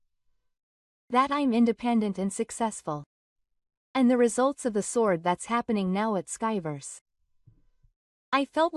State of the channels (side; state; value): both; identical; correlation 1.00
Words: That I'm independent and successful. And the results of the sword that's happening now at Skyverse. I felt